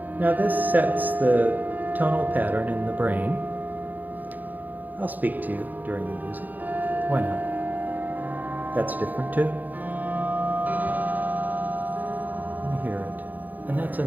Now this sets the tonal pattern in the brain. I'll speak to you during the music. Why not? That's different too. Let me hear it. And that's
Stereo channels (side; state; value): left; late; 0.083 ms